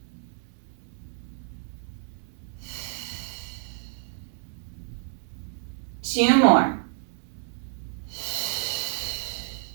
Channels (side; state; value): left; silent; digital silence